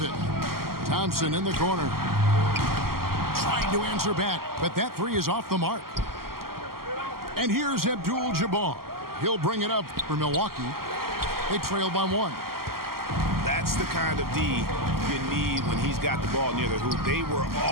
Thompson in the corner. Trying to answer back, but that three is off the mark. And here's Abdul-Jabbar. He'll bring it up for Milwaukee. They trail by one. That's the kind of D you need when he's got the ball near the hoop. They were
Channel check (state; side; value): late; left; 0.93 ms